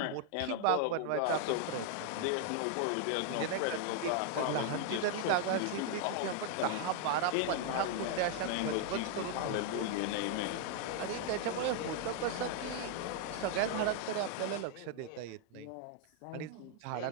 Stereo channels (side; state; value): both; different; correlation 0.00